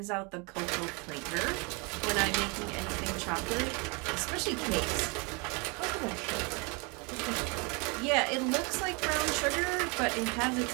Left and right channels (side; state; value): left; quieter; 30.9 dB